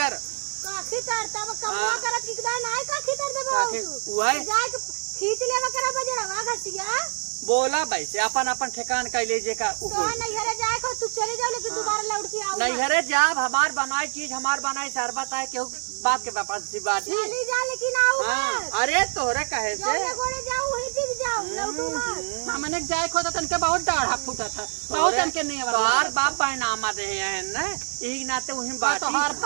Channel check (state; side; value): silent; left; 61 dB below the other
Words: काखी तर तब कमुआ हाँ। करत किकदा नाय काखी तर देबो काखी उहे जाए के खींच लेवा करा बजड़वा घसिया बोला वैसे अपन अपन ठिकान कैले जे का तो नहीं हरे जाए को तू चले जाओ लेकिन दोबारा लौट के आओ नहीं हरे जाब हमार बनाई चीज हमार बनाई शरबत है केहू बाप के पास सी बात ही चली जा लेकिन आओ हाँ मत अरे तोहरे कहे से जौने गोड़े जाओ वहीं टिक जाओ लौटू मत हमने जाए खो तो तनके बहुत डाढ़ा फूटा था बहुत तनके नहीं तोहार बाप पैनामा दे हैं ना यही नाते वही बात तो हर